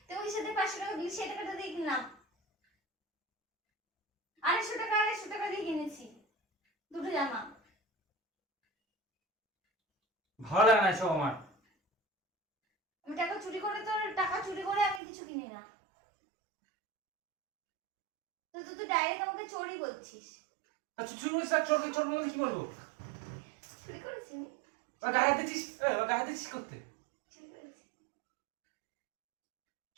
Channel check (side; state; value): left; drops out; at 15.0 s